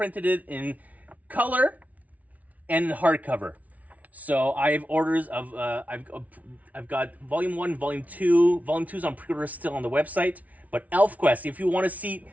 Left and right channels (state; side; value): late; left; 0.071 ms